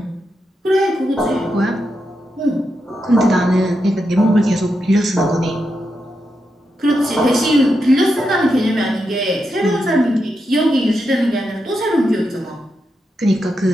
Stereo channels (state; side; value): normal; both; correlation 0.86